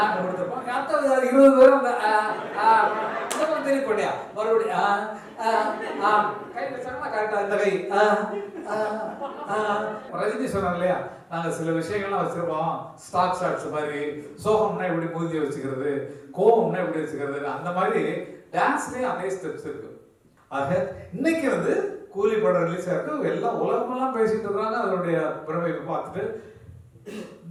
கொடுத்துருப்போம். 20 பேரும் அந்த தெரிய போட்டியா மறுபடியும் கை வச்சாங்கன்னா கரெக்டாக இந்த கை. ரஜினி சொன்னாங்க இல்லையா, நாங்கள் சில விஷயங்கள்லாம் வச்சிருப்போம், ஸ்டாக் ஷாட்ஸ் மாதிரி. சோகம்னா எப்படி மூஞ்சி வச்சுக்கிறது, கோவம்னா எப்படி வச்சுக்கிறது, அந்த மாதிரி டான்ஸ்லேயும் அதே ஸ்டெப்ஸ் இருக்கு. ஆக இன்னைக்கு வந்து கூலி படம் ரிலீஸ் ஆயிருக்கு, எல்லாம் உலகமெல்லாம் பேசிட்டு இருக்காங்க. அதனுடைய பிறவை பார்த்துட்டு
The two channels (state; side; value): identical; both; correlation 1.00